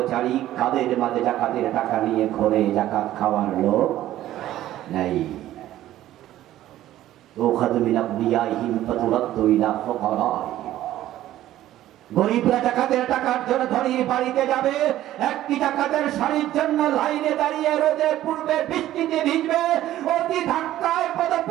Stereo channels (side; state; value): left; quieter; 13.7 dB